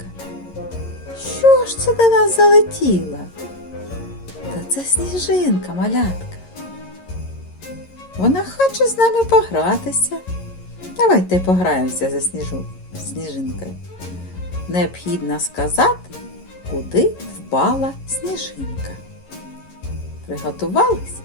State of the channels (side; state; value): right; late; 11 ms